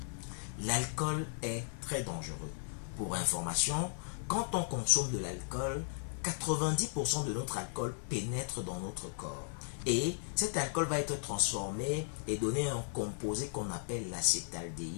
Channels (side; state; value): right; silent; 54 dB below the other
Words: L'alcool est très dangereux. Pour information, quand on consomme de l'alcool, 90% de notre alcool pénètre dans notre corps. Et cet alcool va être transformé et donner un composé qu'on appelle